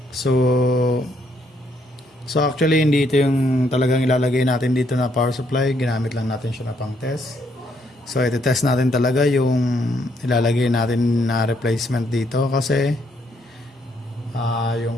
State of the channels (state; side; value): normal; both; correlation 0.72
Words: So actually hindi ito yung talagang ilalagay natin dito na power supply. Ginamit lang natin siya na pang test. So iti-test natin talaga yung ilalagay natin na replacement dito kasi yung